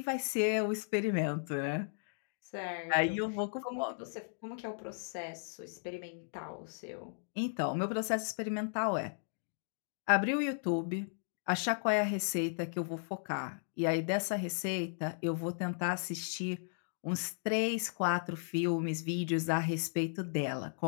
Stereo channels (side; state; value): right; silent; digital silence